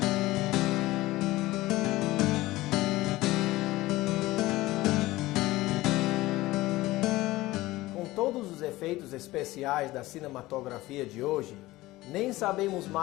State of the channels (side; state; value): right; quieter; 18.3 dB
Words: Todos os efeitos especiais da cinematografia de hoje, nem sabemos